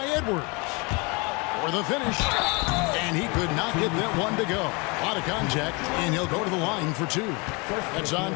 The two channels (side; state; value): right; quieter; 29.0 dB